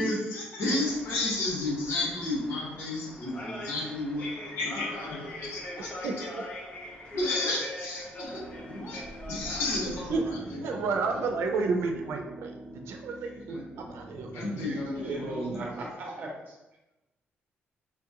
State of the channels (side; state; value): both; normal; correlation 0.52